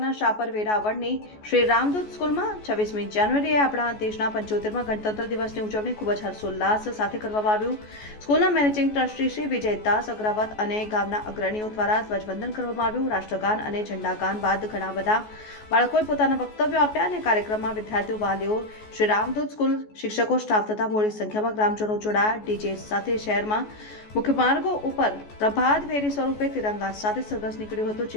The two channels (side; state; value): right; late; 14 ms